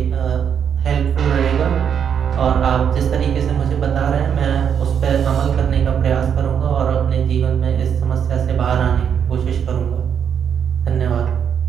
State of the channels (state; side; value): quieter; left; 7.9 dB